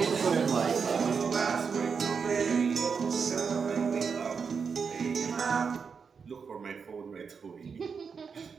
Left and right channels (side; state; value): left; quieter; 5.8 dB